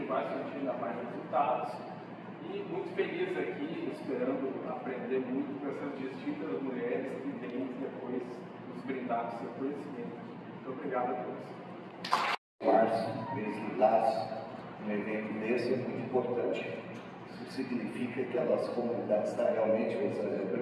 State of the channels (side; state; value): both; identical; correlation 1.00